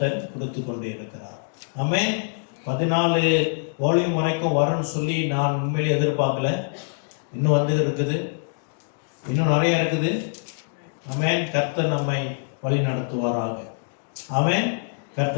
கொடுத்து கொண்டே இருக்கிறார். ஆமென். 14 வால்யூம் வரைக்கும் வரும்னு சொல்லி நான் உண்மையிலே எதிர்பார்க்கல. இன்னும் வந்து இருக்குது, இன்னும் நிறைய இருக்குது. ஆமென். கர்த்தர் நம்மை வழி நடத்துவாராக. ஆமென்.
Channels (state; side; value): silent; right; digital silence